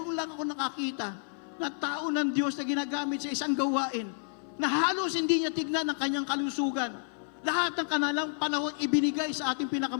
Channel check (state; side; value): silent; right; 58 dB below the other